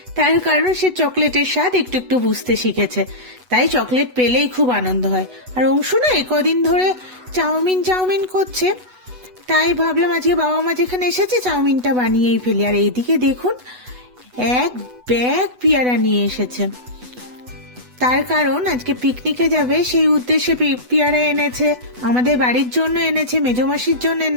তার কারণ সে চকলেটের স্বাদ একটু একটু বুঝতে শিখেছে, তাই চকলেট পেলেই খুব আনন্দ হয়। আর অংশু না কদিন ধরে চাউমিন চাউমিন করছে, তাই ভাবলাম আজকে বাবা মা যেখানে এসেছে চাউমিনটা বানিয়েই ফেলি। আর এইদিকে দেখুন, এক ব্যাগ পেয়ারা নিয়ে এসেছে। তার কারণ আজকে পিকনিকে যাবে, সেই উদ্দেশ্যে পেয়ারা এনেছে, আমাদের বাড়ির জন্য এনেছে, মেজো মাসির জন্য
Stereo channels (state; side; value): late; left; 8.1 ms